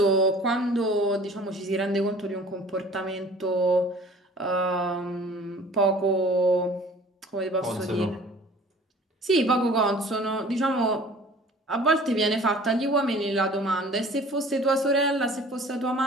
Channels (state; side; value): normal; both; correlation 0.49